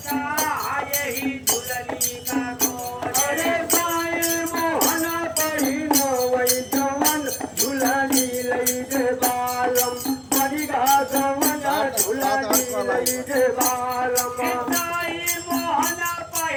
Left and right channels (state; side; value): identical; both; correlation 1.00